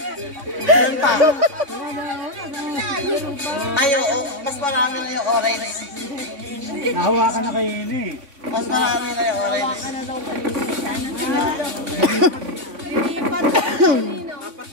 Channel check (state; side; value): late; left; 3.5 ms